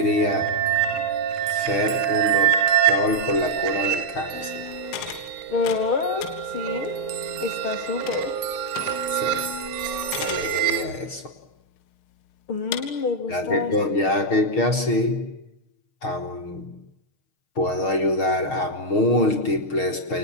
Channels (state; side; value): late; right; 6.5 ms